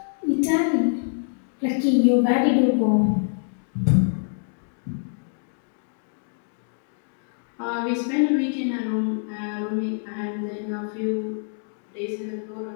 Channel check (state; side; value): silent; right; digital silence